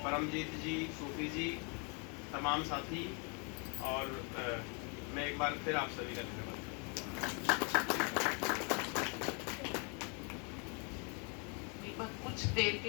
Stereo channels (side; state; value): right; quieter; 35.8 dB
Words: परमजीत जी, सूफी जी, तमाम साथी, और मैं एक बार फिर आप सभी का धन्यवाद। कुछ देर